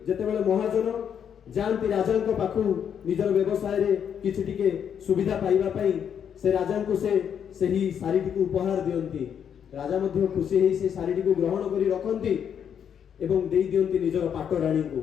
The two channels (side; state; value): right; quieter; 8.2 dB